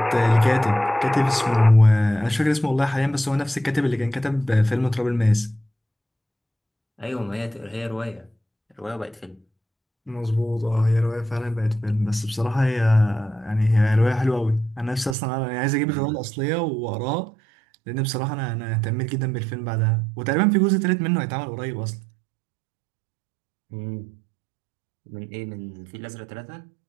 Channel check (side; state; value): left; drops out; at 15.2 s